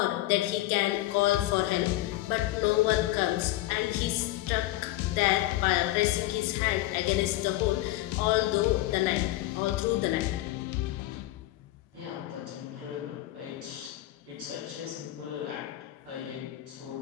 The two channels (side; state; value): right; quieter; 16.5 dB